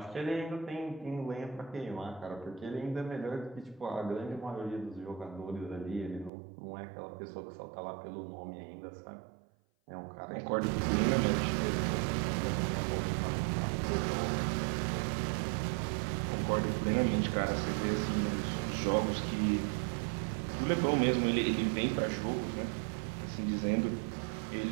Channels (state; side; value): drops out; left; at 6.3 s